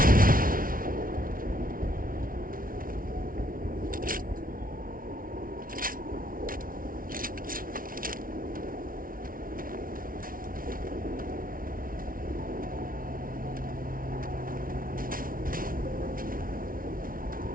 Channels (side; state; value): left; late; 0.41 ms